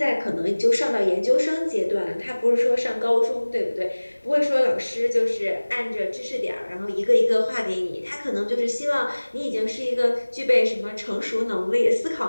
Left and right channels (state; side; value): inverted; both; correlation -1.00